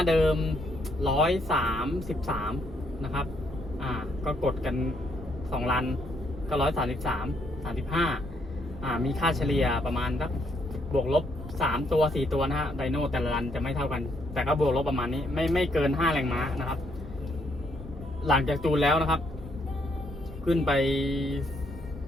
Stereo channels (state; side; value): normal; both; correlation 0.72